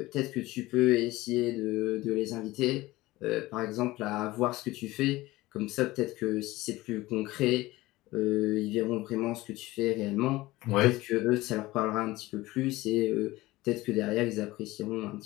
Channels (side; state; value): right; quieter; 18.8 dB